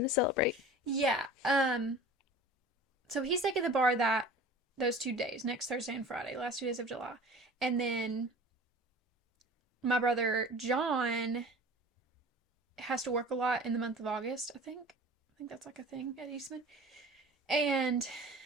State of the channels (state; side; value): normal; both; correlation 0.41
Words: to celebrate? Yeah. So he's taking the bar those 2 days, next Thursday and Friday, last 2 days of July. And then my brother John has to work a lot in the month of August, I think. I think that's like a thing at Eastman. And